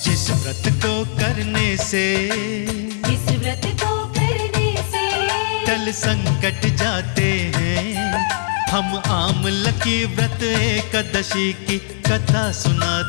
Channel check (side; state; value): right; silent; 66 dB below the other